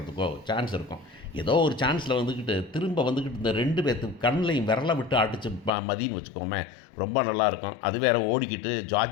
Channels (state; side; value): drops out; right; at 5.7 s